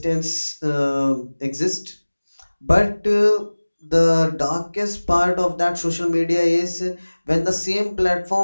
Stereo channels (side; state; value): both; inverted; correlation -1.00